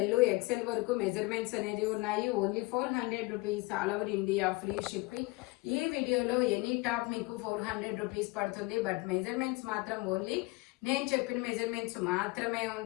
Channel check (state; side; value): quieter; right; 24.2 dB